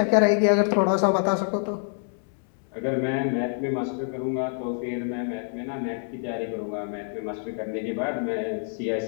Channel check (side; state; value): right; silent; 61 dB below the other